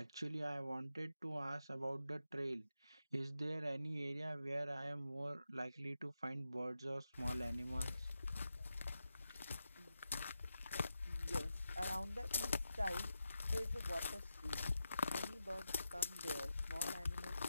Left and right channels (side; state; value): both; inverted; correlation -0.89